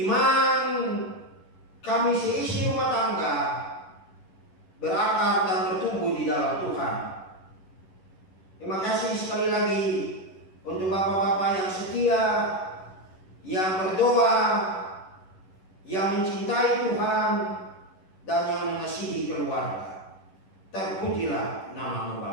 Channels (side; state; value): right; late; 11 ms